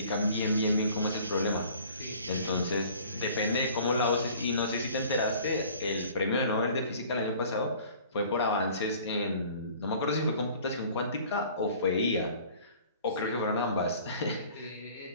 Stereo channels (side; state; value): both; inverted; correlation -0.49